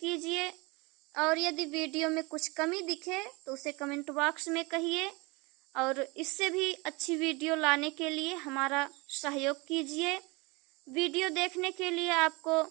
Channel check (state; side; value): quieter; left; 26.1 dB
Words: और यदि वीडियो में कुछ कमी दिखे तो उसे कमेंट बॉक्स में कहिए, और इससे भी अच्छी वीडियो लाने के लिए हमारा सहयोग कीजिए। वीडियो देखने के लिए आपको